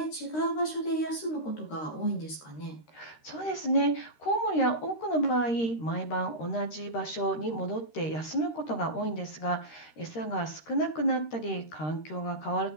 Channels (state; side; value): late; right; 13 ms